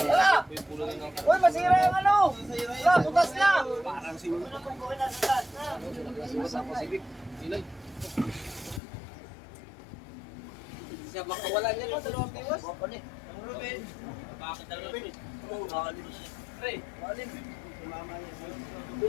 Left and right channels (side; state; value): right; drops out; at 8.8 s